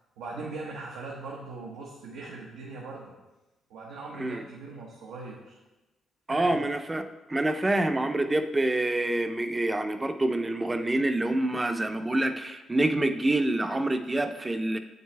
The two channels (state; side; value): normal; both; correlation 0.94